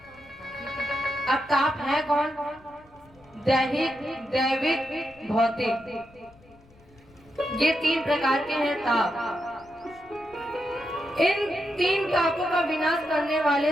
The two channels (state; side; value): noise; left; rumble, 27 dB below the sound